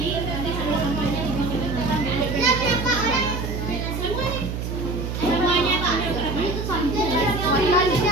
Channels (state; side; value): noise; right; hum, 4 dB below the sound